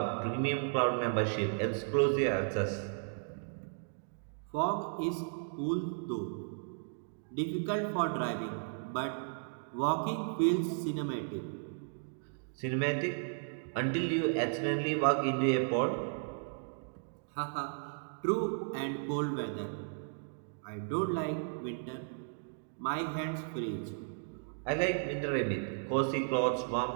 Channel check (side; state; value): left; silent; digital silence